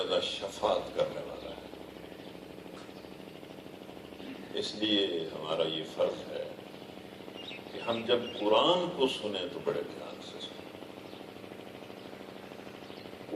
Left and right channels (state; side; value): identical; both; correlation 1.00